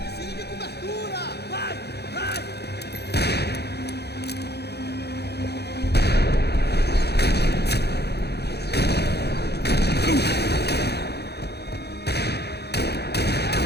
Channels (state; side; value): late; right; 0.48 ms